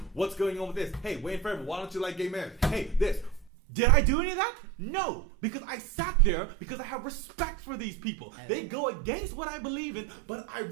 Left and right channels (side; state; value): left; drops out; at 3.5 s